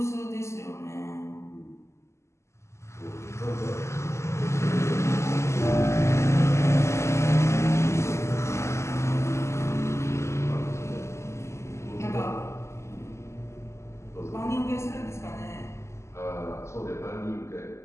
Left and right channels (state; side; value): late; right; 0.13 ms